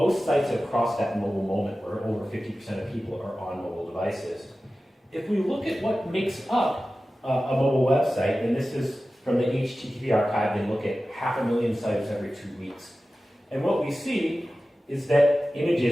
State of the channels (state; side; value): normal; both; correlation 0.95